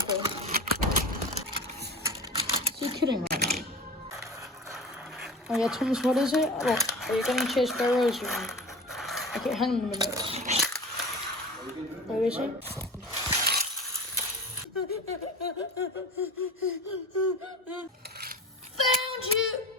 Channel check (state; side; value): normal; both; correlation 0.34